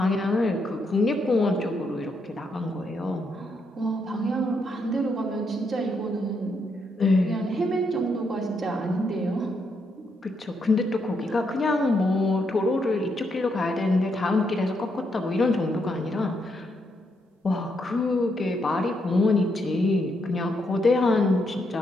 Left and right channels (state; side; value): normal; both; correlation 0.78